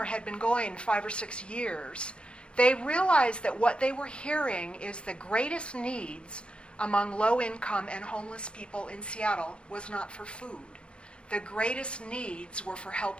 had been going 5 or 6 years, they realized that what they were hearing is the greatest needs among low-income and homeless people in Seattle was not for food. The greatest needs were for help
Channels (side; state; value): right; late; 0.058 ms